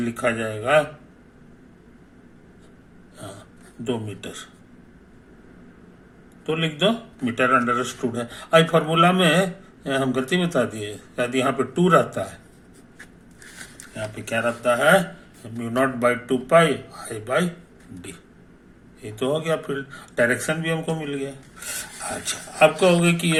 जाएगा 2 मीटर, तो लिख दो मीटर अंडरस्टूड है। आई फॉर्मूला में हम गलती बता दिए, शायद यहाँ पे 2 रहता है, यहाँ पे क्या रहता है, mu naught by 2 pi I by D. ये तो हो गया, फिर डायरेक्शन भी हमको मिल गया। अच्छा, अब कहोगे कि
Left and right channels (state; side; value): identical; both; correlation 1.00